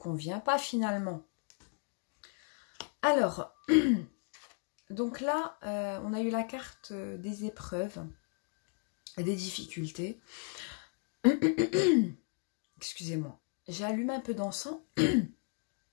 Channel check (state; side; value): quieter; right; 38.9 dB